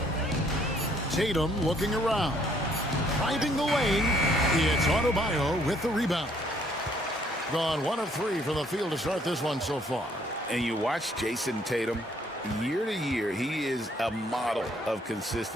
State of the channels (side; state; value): both; normal; correlation 0.65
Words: Tatum looking around. Finding the lane. It's Adebayo with the rebound. Gone 1 of 3 from the field to start this one so far. And you watch Jason Tatum. Year to year, he is a model of